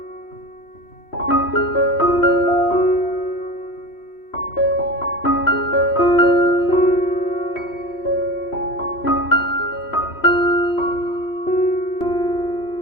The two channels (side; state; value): right; late; 3.1 ms